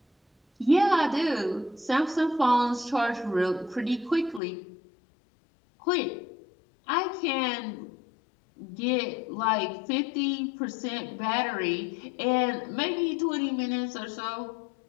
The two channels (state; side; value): drops out; right; at 4.4 s